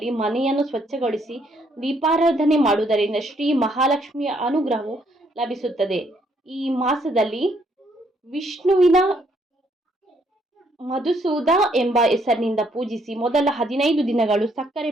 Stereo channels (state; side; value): normal; both; correlation 0.70